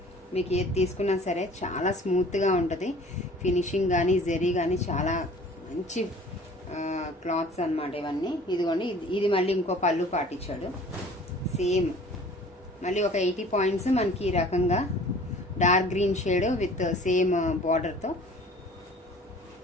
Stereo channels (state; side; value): normal; both; correlation 0.48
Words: మీకు ఏది తీసుకున్నా సరే చాలా స్మూత్గా ఉంటుంది. ఫినిషింగ్ కానీ జెరీ కానీ చాలా మంచి క్లాత్స్ అన్నమాట ఇవన్నీ. ఇదిగోండి, ఇది మళ్ళీ ఇంకో పళ్ళు పాటు ఇచ్చాడు. సేమ్ మళ్ళీ ఒక 80 పాయింట్స్ మనకి ఈ రకంగా dark green shade with same బార్డర్తో